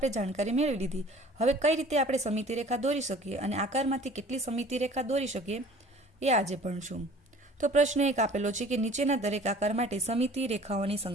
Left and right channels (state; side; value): normal; both; correlation 0.49